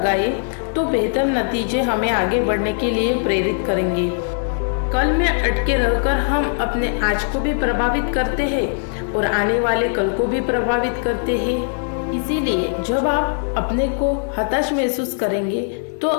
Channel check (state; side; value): silent; right; digital silence